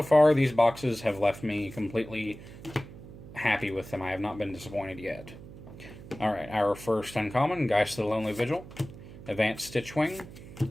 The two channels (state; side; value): noise; right; hum, 16 dB below the sound